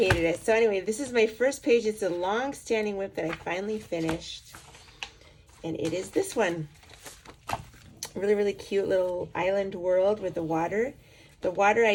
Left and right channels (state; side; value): identical; both; correlation 1.00